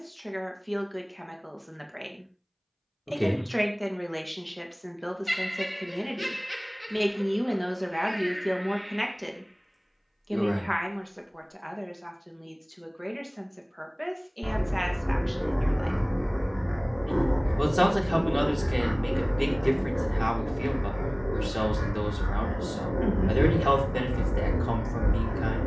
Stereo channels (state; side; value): identical; both; correlation 1.00